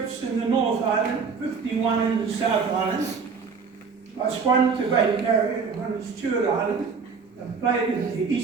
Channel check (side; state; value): left; quieter; 5.4 dB